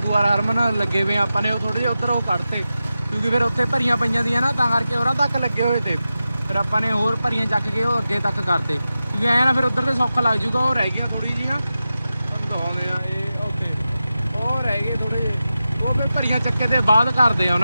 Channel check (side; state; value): both; inverted; correlation -0.93